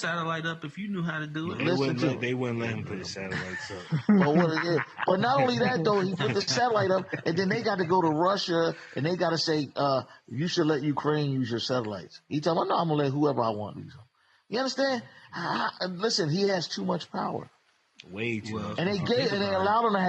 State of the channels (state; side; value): identical; both; correlation 1.00